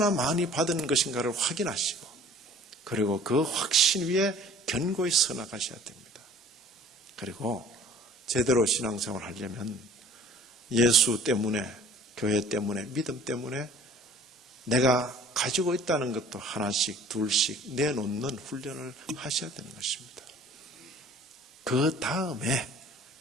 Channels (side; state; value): both; normal; correlation 0.50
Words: 많이 받은 것인가를 확인하시고 그리고 그 확신 위에 견고히 서 나가셔야 됩니다. 그리고 제대로 신앙생활을 하려면 예수 때문에, 교회 때문에, 믿음 때문에 내가 가지고 있다는 것도 하나씩 둘씩 내놓는 훈련을 하셔야 되는 것입니다. 그 다음에